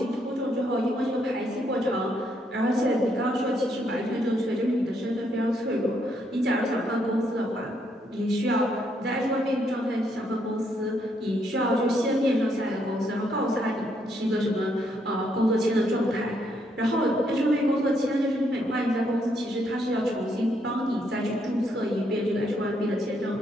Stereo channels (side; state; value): both; normal; correlation 0.74